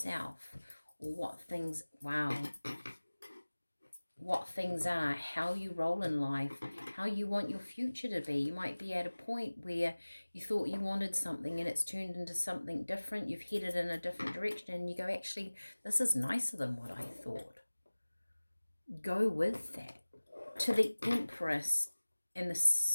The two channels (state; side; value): inverted; both; correlation -1.00